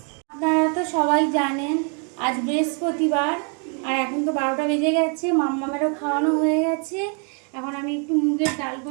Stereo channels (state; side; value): quieter; left; 39.3 dB